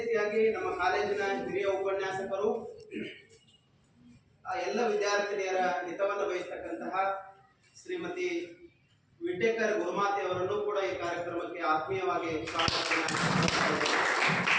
ನಮ್ಮ ಕಾಲೇಜಿನ ಹಿರಿಯ ಉಪನ್ಯಾಸಕರು ಎಲ್ಲ ವಿದ್ಯಾರ್ಥಿನಿಯರ ಹಿತವನ್ನು ಬಯಸ್ತಕ್ಕಂತಹ ಶ್ರೀಮತಿ ವಿಟೇಕರ್ ಗುರುಮಾತೆ ಅವರನ್ನು ಕೂಡ ಈ ಕಾರ್ಯಕ್ರಮಕ್ಕೆ ಆತ್ಮೀಯವಾಗಿ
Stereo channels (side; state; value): both; identical; correlation 1.00